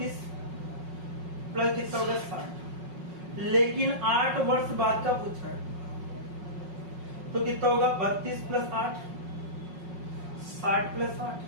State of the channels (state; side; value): late; left; 5.5 ms